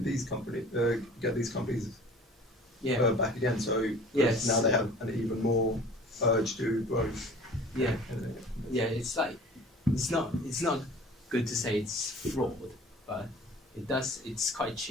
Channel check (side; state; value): both; normal; correlation 0.45